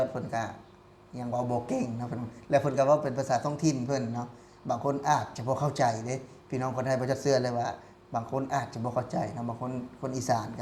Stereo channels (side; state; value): both; identical; correlation 1.00